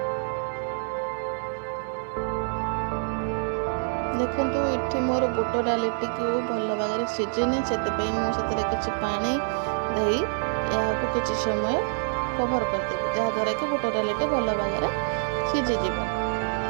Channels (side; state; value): left; silent; 61 dB below the other